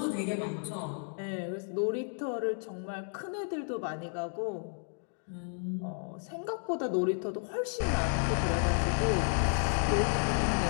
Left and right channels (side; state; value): right; silent; 56 dB below the other